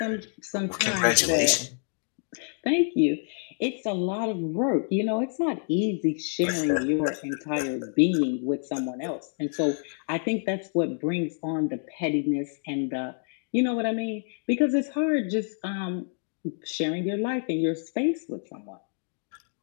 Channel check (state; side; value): silent; right; 60 dB below the other